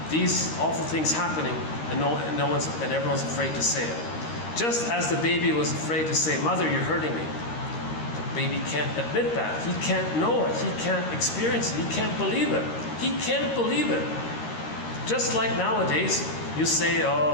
these awful things happening, and everyone's afraid to say it. Just as the baby was afraid to say, mother, you're hurting me. The baby can't admit that. He can't know it. He can't experience it. He can't believe it. He can't believe it. Just like nowadays, you say,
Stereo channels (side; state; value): right; late; 13 ms